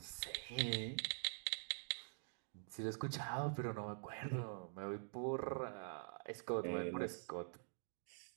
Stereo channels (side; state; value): left; silent; digital silence